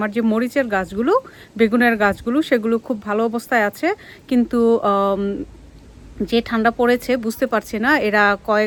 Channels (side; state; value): both; identical; correlation 1.00